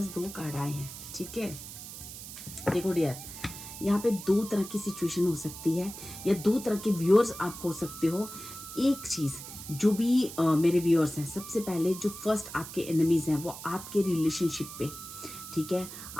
दो कार्ड आए हैं, ठीक है। देखो डियर, यहाँ पे दो तरह की सिचुएशन हो सकती है या दो तरह के व्यूअर्स आप हो सकते हो। एक चीज़, जो भी मेरे व्यूअर्स हैं, सबसे पहले जो फर्स्ट आपके एनिमीज हैं वो आपके रिलेशनशिप पे, ठीक है,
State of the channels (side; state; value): right; noise; hiss, 12 dB below the sound